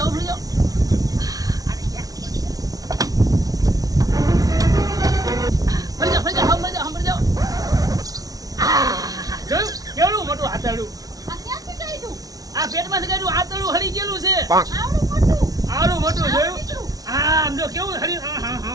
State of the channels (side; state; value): left; late; 0.18 ms